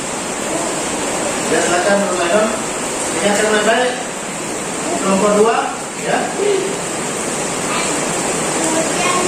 Ya, silakan Nurmainon. Ingatkan baik-baik. Kelompok 2, ya.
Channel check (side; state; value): both; identical; correlation 1.00